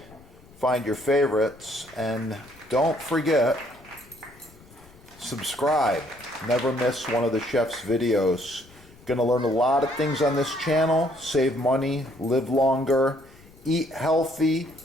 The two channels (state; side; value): noise; left; rumble, 24 dB below the sound